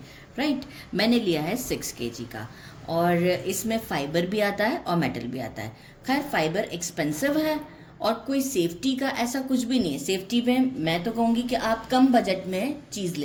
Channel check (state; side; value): identical; both; correlation 1.00